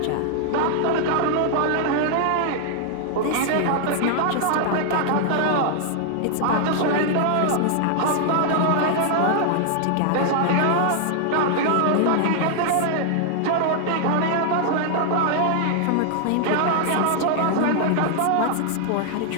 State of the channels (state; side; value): different; both; correlation 0.00